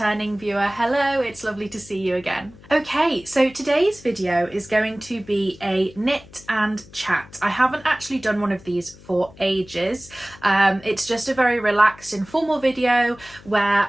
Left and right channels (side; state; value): left; noise; hum, 22 dB below the sound